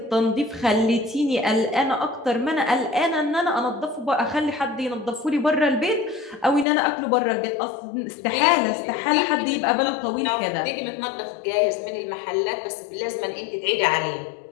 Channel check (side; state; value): right; drops out; at 6.7 s